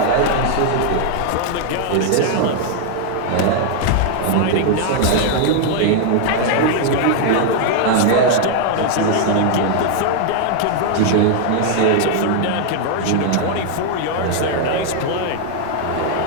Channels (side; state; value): both; different; correlation 0.00